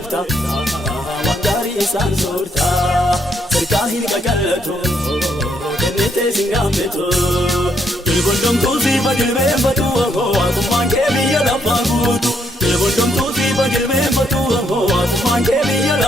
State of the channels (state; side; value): normal; both; correlation 0.73